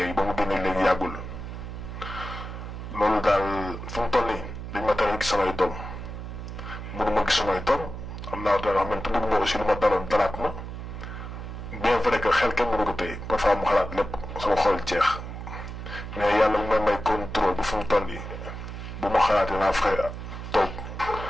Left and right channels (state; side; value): noise; right; hum, 8 dB below the sound